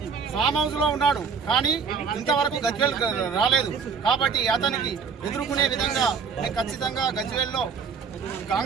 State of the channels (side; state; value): left; quieter; 5.8 dB